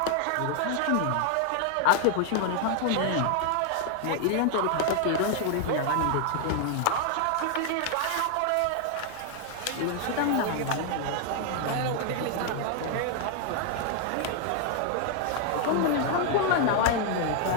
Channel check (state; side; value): different; both; correlation 0.00